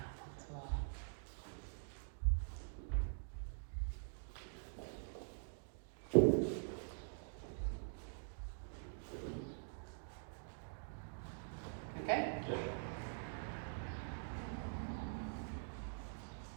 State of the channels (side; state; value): left; silent; digital silence